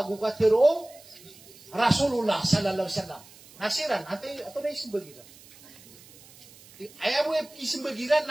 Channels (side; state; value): right; noise; hiss, 22 dB below the sound